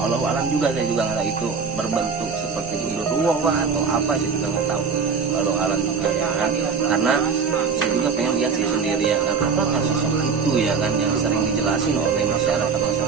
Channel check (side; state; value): left; quieter; 5.5 dB